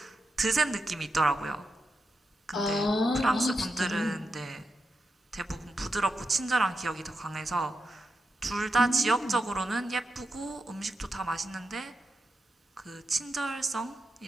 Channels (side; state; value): both; normal; correlation 0.87